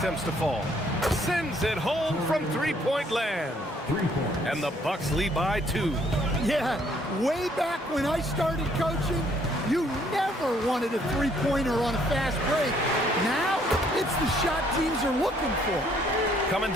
to fall. Sends it home from three-point land. And the Bucks lead by 2. Yeah, way back when I started coaching, you never wanted a three-pointer on a fast break. Now, it's the shot teams are looking for. Coming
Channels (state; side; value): normal; both; correlation 0.65